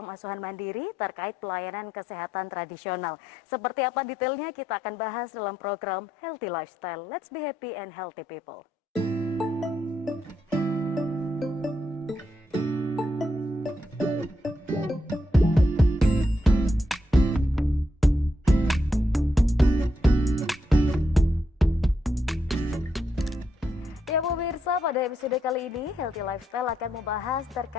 asuhan mandiri terkait pelayanan kesehatan tradisional. Seperti apa detailnya kita akan bahas dalam program Healthy Lifestyle. Let's be happy and healthy people. Ya pemirsa, pada episode kali ini Healthy Lifestyle akan membahas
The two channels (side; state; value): both; normal; correlation 0.80